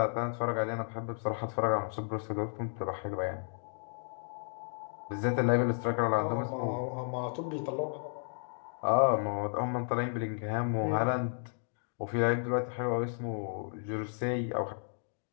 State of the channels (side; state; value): right; silent; digital silence